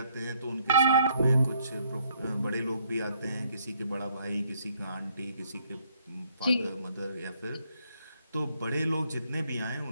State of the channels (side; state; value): both; inverted; correlation -0.68